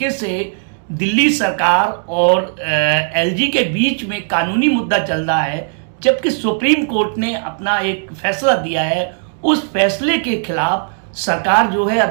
से दिल्ली सरकार और एलजी के बीच में कानूनी मुद्दा चल रहा है, जबकि सुप्रीम कोर्ट ने अपना एक फैसला दिया है, उस फैसले के खिलाफ सरकार जो है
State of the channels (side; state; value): left; silent; digital silence